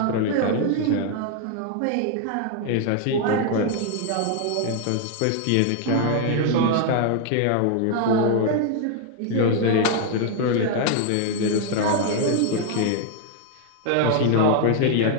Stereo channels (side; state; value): both; different; correlation 0.00